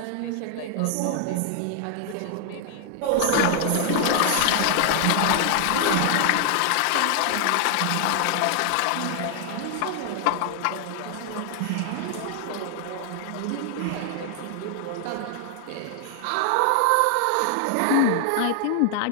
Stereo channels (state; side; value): different; both; correlation 0.00